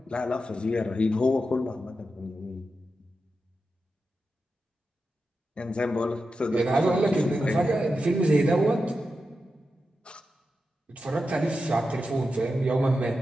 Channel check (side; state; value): both; normal; correlation 0.89